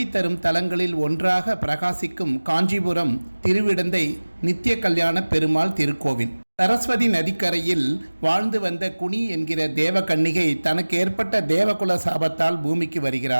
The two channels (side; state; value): both; inverted; correlation -1.00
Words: தரும் தலங்களில் ஒன்றாக பிரகாசிக்கும் காஞ்சிபுரம் திருவிடந்தை நித்திய கல்யாண பெருமாள் திருக்கோவில். சரஸ்வதி நதிக்கரையில் வாழ்ந்து வந்த குனி என்கிற தேவகன்னிகை தனக்கு ஏற்பட்ட தேவகுல சாபத்தால் பூமிக்கு